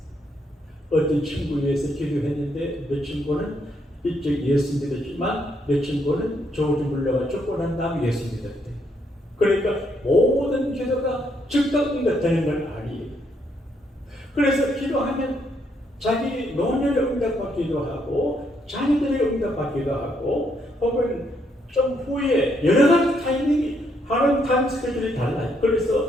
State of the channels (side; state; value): both; normal; correlation 0.74